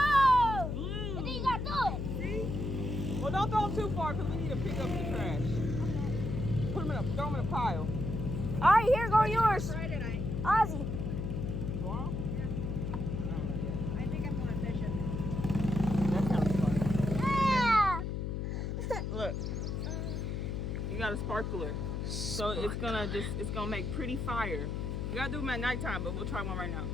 Blue. And then you gotta throw it. See? Well, don't throw them too far because we need to pick up the trash. Throw them in a pile. All right, here go yours, Friday night. Ozzy. Tomorrow? I think I'm going fishing. That sounds fun. Yeah. Look. You got a sparkler. So it's gonna make pretty fire. You gotta do them at nighttime, but we'll try one right now,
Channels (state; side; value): noise; left; hum, 2 dB below the sound